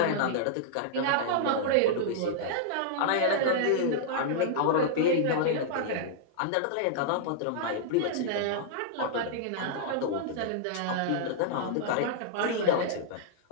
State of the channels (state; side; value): different; both; correlation -0.01